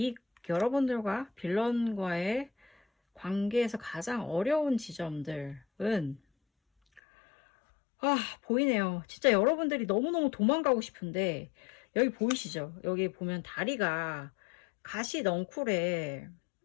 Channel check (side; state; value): right; drops out; at 7.0 s